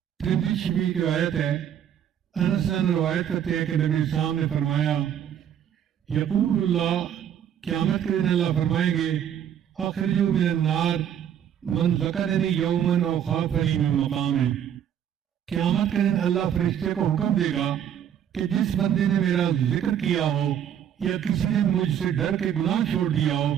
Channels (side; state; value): left; quieter; 9.4 dB